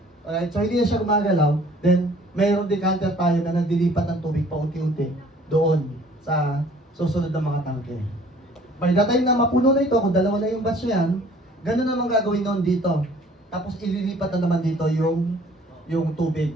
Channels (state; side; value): normal; both; correlation 0.54